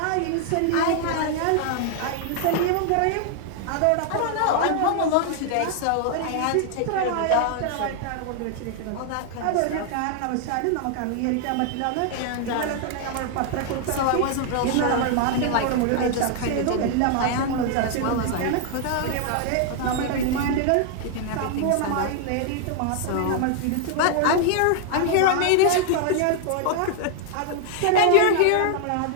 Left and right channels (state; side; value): different; both; correlation 0.00